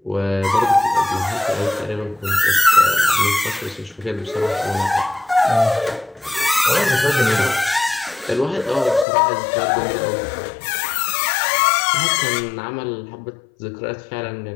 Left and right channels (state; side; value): drops out; right; at 9.1 s